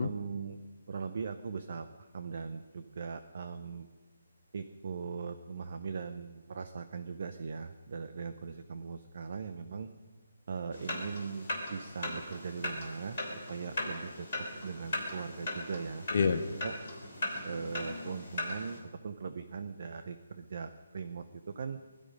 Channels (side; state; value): both; inverted; correlation -0.79